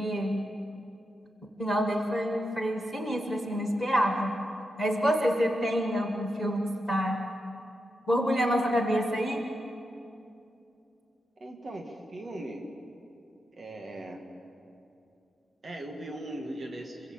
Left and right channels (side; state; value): both; normal; correlation 0.86